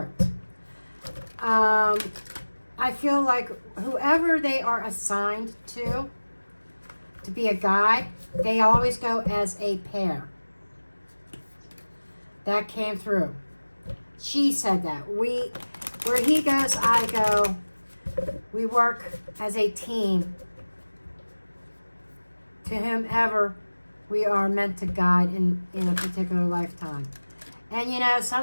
I feel like whoever they are assigned to be a guide, they always go as a pair. That came through. She said that. Where he goes, I go. We work as a team to whomever we are meant to guide in a particular lifetime. And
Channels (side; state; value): both; inverted; correlation -1.00